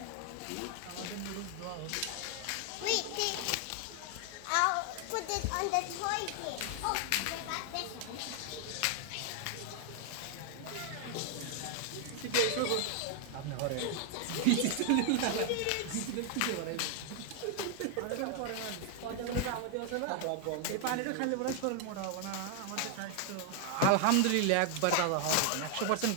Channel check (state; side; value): different; both; correlation 0.00